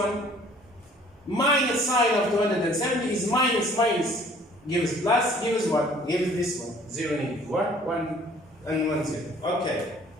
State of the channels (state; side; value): normal; both; correlation 0.55